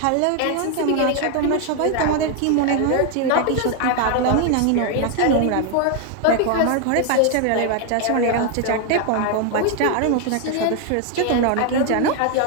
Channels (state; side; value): different; both; correlation 0.00